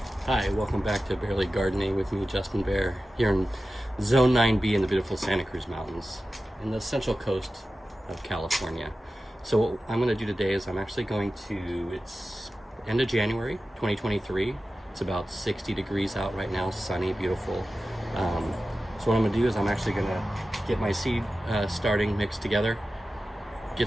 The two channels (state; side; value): normal; both; correlation 0.94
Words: Hi, welcome back to Barely Gardening with me, Justin Bear, here in Zone 9B in the beautiful Santa Cruz Mountains in the central coast of California. So what I'm going to do today is I'm actually going to, it's end of January 2023. It's about 60 degrees out right now, sunny, beautiful. So what I'm going to do is I'm actually going to get my seed starting mixed together,